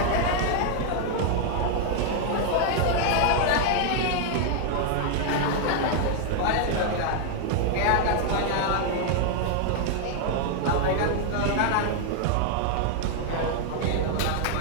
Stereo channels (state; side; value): different; both; correlation 0.00